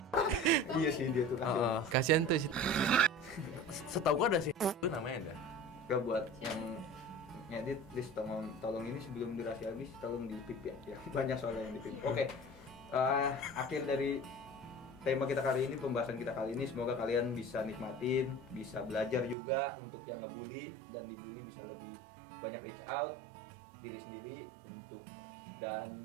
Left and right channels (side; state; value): left; drops out; at 19.4 s